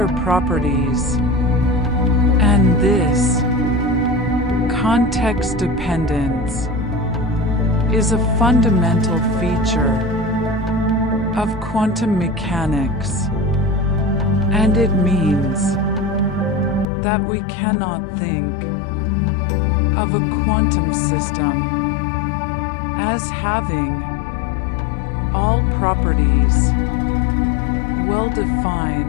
properties, and this context dependence is a fundamental feature of quantum mechanics, and it means that we cannot think of a quantum system as having all properties well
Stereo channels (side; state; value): right; drops out; at 16.9 s